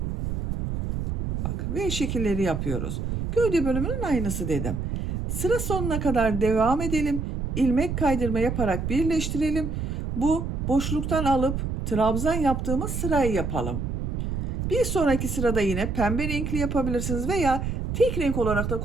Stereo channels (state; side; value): noise; right; rumble, 2 dB below the sound